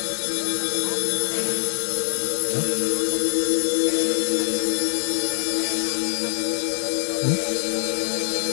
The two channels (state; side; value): silent; right; 63 dB below the other